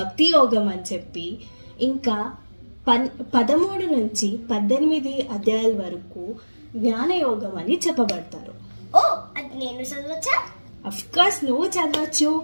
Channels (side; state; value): both; inverted; correlation -1.00